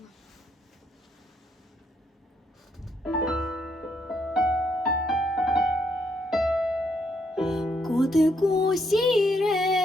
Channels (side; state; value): both; normal; correlation 0.74